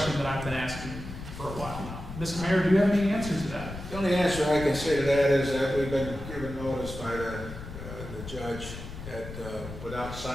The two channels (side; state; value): left; noise; rumble, 10 dB below the sound